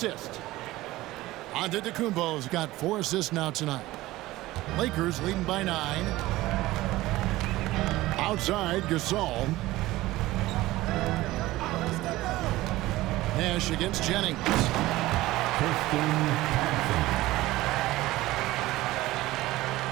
Antetokounmpo's got 4 assists now tonight. Lakers leading by 9. Outside, Gasol. Nash against Jennings.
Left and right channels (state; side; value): quieter; left; 17.6 dB